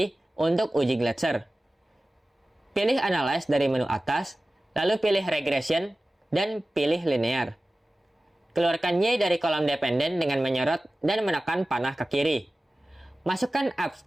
untuk uji Glatzer. Pilih Analyze dari menu atas, lalu pilih Regression, dan pilih Linear. Keluarkan Y dari kolom dependent dengan menyorot dan menekan panah ke kiri. Masukkan apps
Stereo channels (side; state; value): both; normal; correlation 0.96